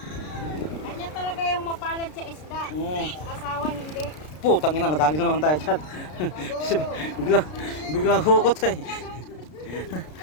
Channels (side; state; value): right; late; 33 ms